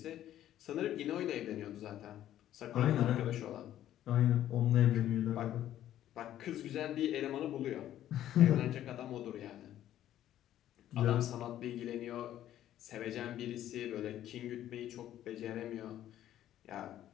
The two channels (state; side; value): quieter; right; 12.2 dB